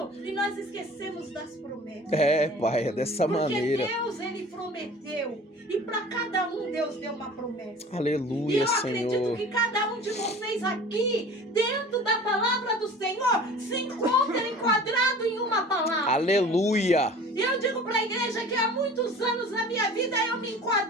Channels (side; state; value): both; normal; correlation 0.43